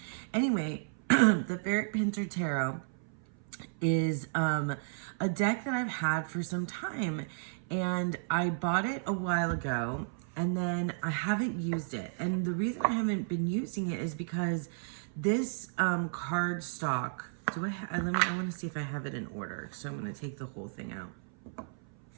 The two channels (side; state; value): left; silent; 56 dB below the other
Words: Anyway, the Ferric Pinter Tarot is a deck that I've had for some time, and I bought it a while ago, and then I haven't used it. And the reason I haven't been using it is because this card stock, I want to see if I have it in order. So I'm going to take the whole thing out.